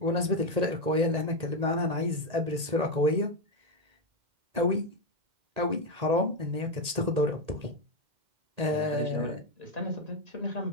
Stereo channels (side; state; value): left; late; 1.8 ms